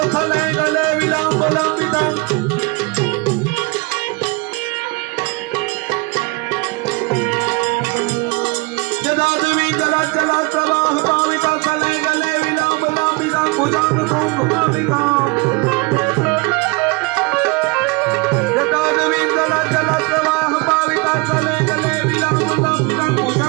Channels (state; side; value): quieter; left; 27.0 dB